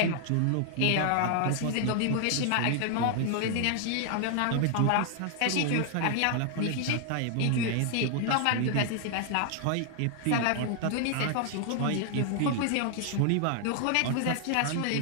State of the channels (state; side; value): different; both; correlation 0.00